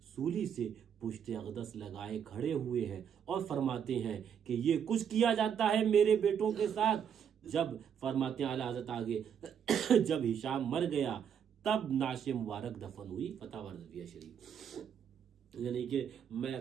سولی سے پشت اقدس لگائے کھڑے ہوئے ہیں اور فرماتے ہیں کہ یہ کچھ کیا جاتا ہے میرے بیٹوں کے ساتھ۔ جب فرماتے ہیں اعلیٰ حضرت آگے جب ہشام مر گیا تب نعش مبارک دفن ہوئی۔ فتح رضویہ شریف۔ یعنی کہ میں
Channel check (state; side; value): quieter; left; 8.1 dB